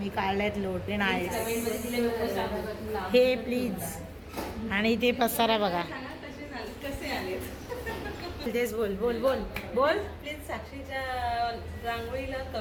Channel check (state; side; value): identical; both; correlation 1.00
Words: काढले आहेत लोटे नाही हे प्लीज. आणि ते पसारा बघा. तेच बोल बोल बोल बोल प्लीज साक्षीच्या रांगोळीला